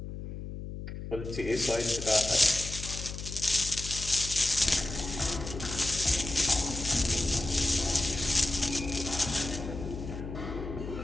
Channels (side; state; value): left; noise; hum, 8 dB below the sound